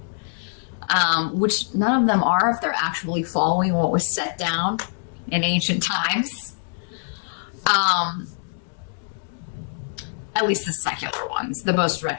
which none of them are if they're actually following what was set down in ancient times. At least the secular ones, the most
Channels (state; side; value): silent; right; digital silence